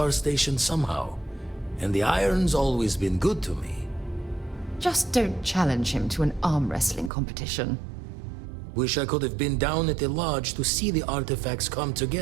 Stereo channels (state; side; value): drops out; left; at 7.1 s